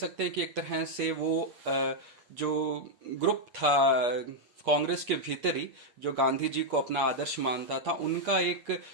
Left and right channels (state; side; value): late; left; 8.4 ms